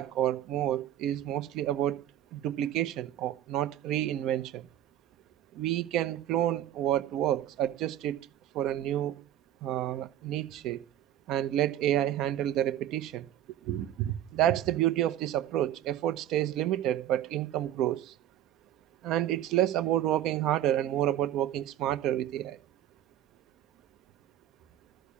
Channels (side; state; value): left; quieter; 12.1 dB